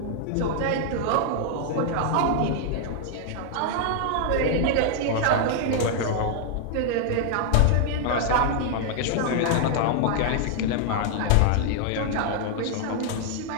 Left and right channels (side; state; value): both; different; correlation 0.00